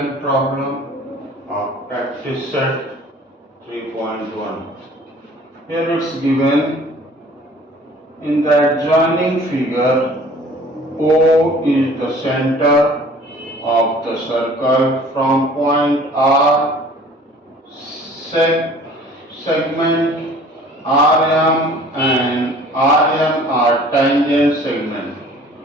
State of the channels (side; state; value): both; normal; correlation 0.50